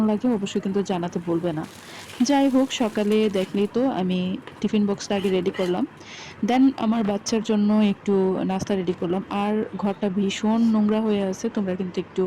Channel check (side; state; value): both; identical; correlation 1.00